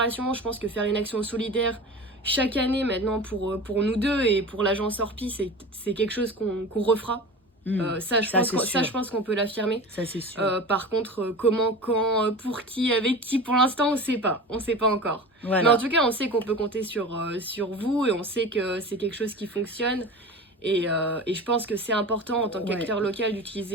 Je pense que faire une action solidaire chaque année maintenant pour nous deux et pour l'agence Orpi, c'est quelque chose qu'on refera. Je pense qu'on peut l'affirmer. Ça, c'est sûr. Par contre, comment, quand, pour qui, avec qui, pour l'instant, on sait pas encore. Voilà. Mais en tout cas, on sait qu'on peut compter sur vous, et on sait que c'est quelque chose qui fonctionne. Et je pense que c'est important en tant qu'acteur local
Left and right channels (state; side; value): normal; both; correlation 0.33